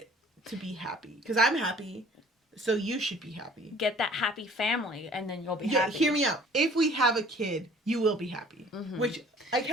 to be happy. Because I'm happy, so you should be happy. Get that happy family, and then you'll be happy. Hear me out. If we have a kid, you will be happy. Mm-hmm. Which, I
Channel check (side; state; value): both; normal; correlation 0.52